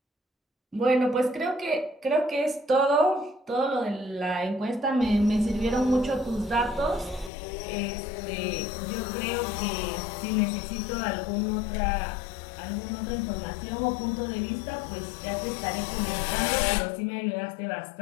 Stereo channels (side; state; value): right; drops out; at 7.3 s